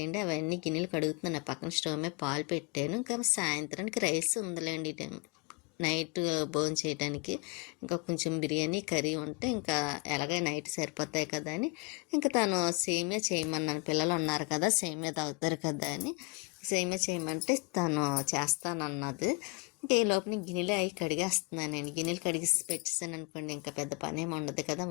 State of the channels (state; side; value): quieter; right; 27.7 dB